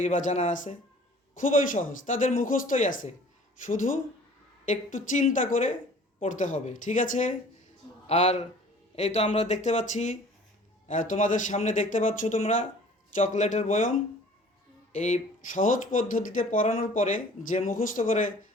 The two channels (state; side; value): normal; both; correlation 0.49